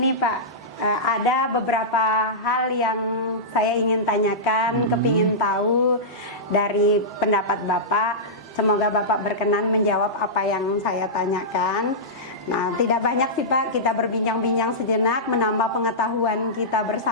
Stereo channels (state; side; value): normal; both; correlation -0.14